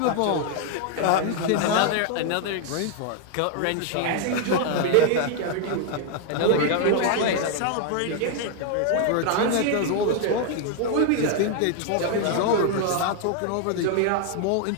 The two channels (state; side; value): different; both; correlation 0.00